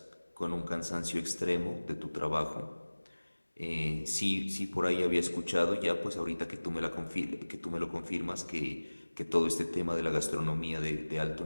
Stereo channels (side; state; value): both; inverted; correlation -1.00